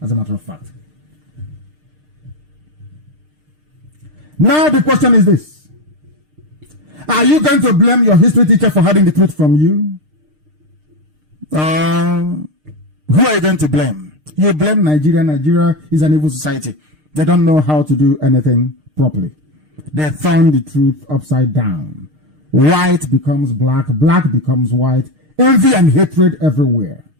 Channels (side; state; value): left; late; 6.6 ms